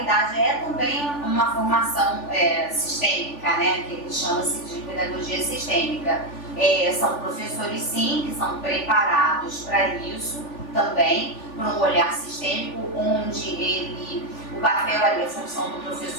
é também uma formação sistêmica, que chama-se de pedagogia sistêmica. São professores sim que são preparados para isso também, para um olhar sistêmico, onde o papel ali, a função do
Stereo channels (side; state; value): right; late; 3.4 ms